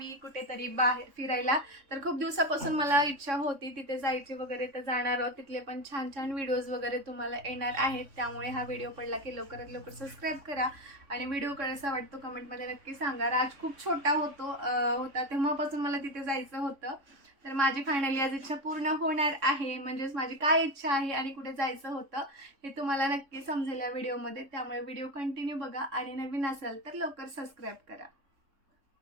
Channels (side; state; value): left; late; 3.6 ms